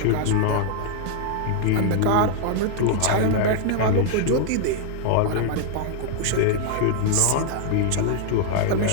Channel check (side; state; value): both; different; correlation 0.00